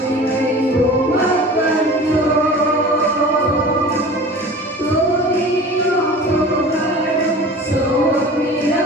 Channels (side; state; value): both; normal; correlation 0.40